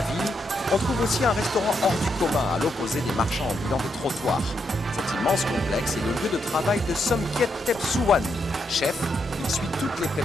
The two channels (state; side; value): normal; both; correlation 0.80